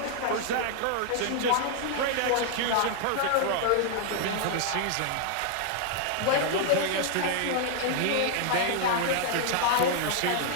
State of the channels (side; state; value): both; different; correlation 0.00